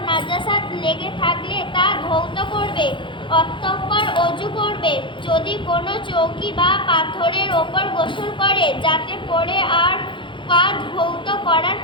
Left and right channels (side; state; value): right; late; 0.24 ms